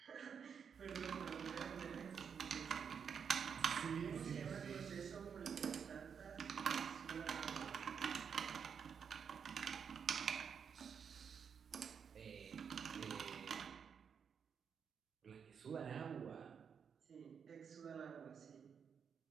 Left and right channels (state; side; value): quieter; left; 6.9 dB